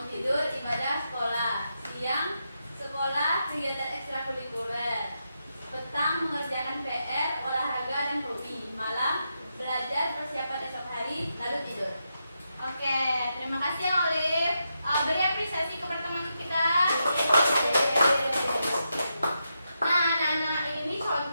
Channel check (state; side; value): inverted; both; correlation -0.85